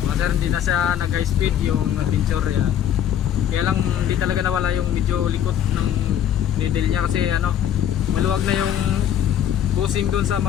Mga sir, hindi na siya nag high speed yung adventure yan. Kaya lang hindi talaga nawala yung medyo likot ng needle niya kasi ano, maluwag na yung bushing doon sa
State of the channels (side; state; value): right; quieter; 10.1 dB